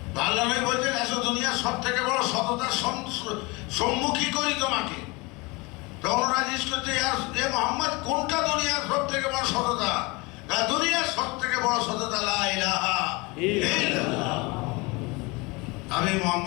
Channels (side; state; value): right; quieter; 25.8 dB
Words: আল্লাহ নবী বলছেন এসো, দুনিয়ার সব থেকে বড় সততার সম্মুখী করি তোমাকে। তখন ওরা জিজ্ঞেস করছে এ মোহাম্মদ, কোনটা দুনিয়ার সব থেকে বড় সততা? দুনিয়ার সব থেকে বড় সততা লা ইলাহা ইল্লাল্লাহ, আমি